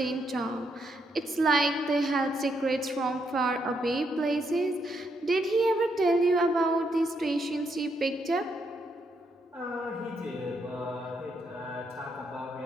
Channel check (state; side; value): normal; both; correlation 0.77